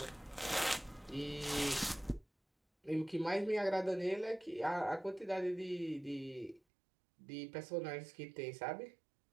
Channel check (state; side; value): drops out; left; at 6.6 s